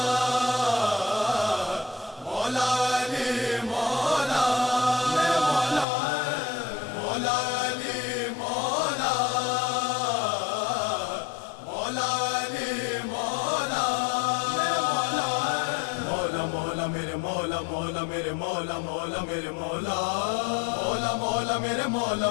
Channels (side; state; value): right; drops out; at 5.9 s